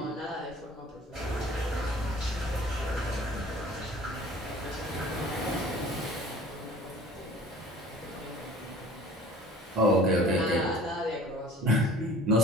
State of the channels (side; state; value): both; normal; correlation 0.47